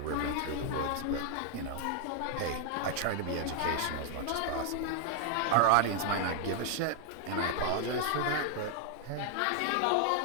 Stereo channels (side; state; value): both; different; correlation 0.00